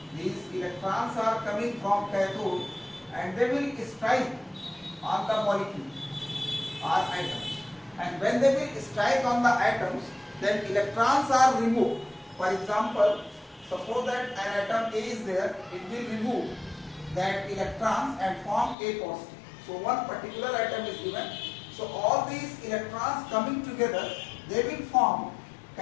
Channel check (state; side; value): drops out; right; at 18.8 s